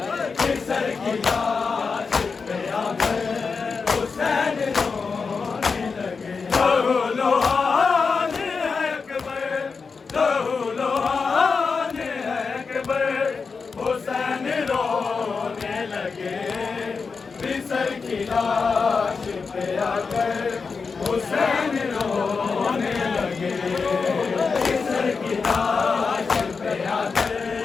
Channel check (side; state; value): right; quieter; 5.0 dB